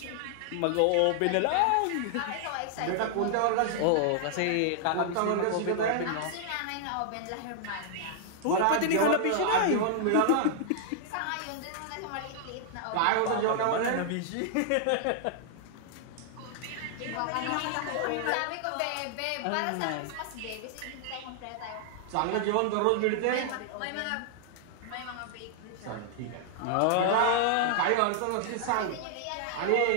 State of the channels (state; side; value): different; both; correlation -0.01